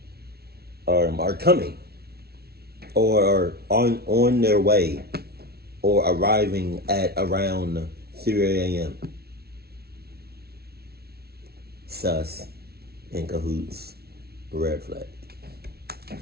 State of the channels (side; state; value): left; late; 0.45 ms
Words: are coming, or on their way, or arriving at around 3 a.m.? Sus, in cahoots, red flag.